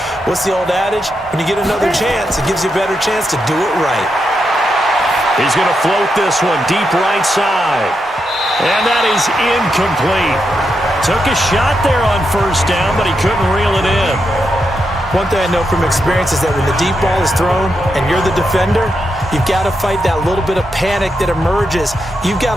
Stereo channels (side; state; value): both; normal; correlation 0.84